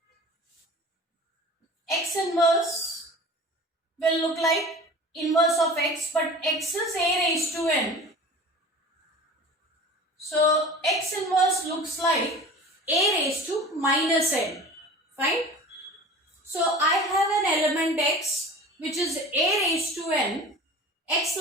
X inverse will look like inverse of x, but x is a raised to n. So x inverse looks like a raised to minus n. Fine. So I have an element x which is a raised to n. X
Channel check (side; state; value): both; normal; correlation 0.39